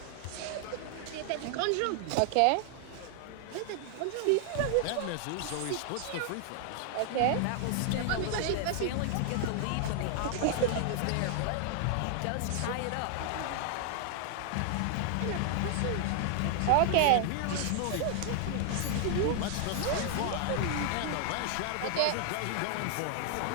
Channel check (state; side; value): different; both; correlation 0.00